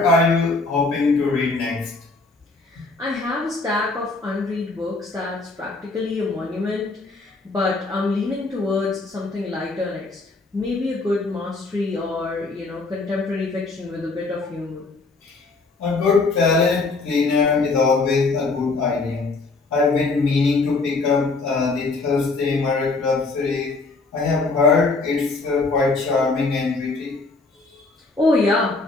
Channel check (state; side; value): quieter; right; 3.7 dB